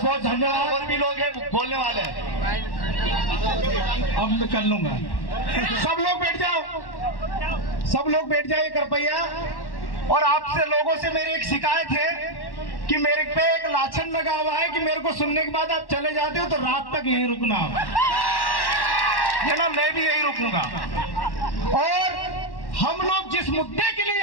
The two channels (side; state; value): right; late; 1.1 ms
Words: बहुत धन्यवाद। और भी लोग हैं बोलने वाले। अब मैं कर लूंगा। सब लोग बैठ जाओ, सब लोग बैठ जाइए कृपया। और आपसे लोगों से मेरी एक शिकायत है कि मेरे पे एक लाछन लगा हुआ है कि मेरे को सुनने के बाद आप चले जाते हो तो रात तक यहीं रुकना, ना मैं भी यहीं रुकूंगा। और हम लोग जिस मुद्दे के लिए